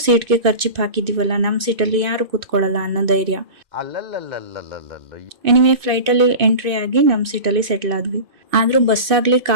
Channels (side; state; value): left; late; 2.6 ms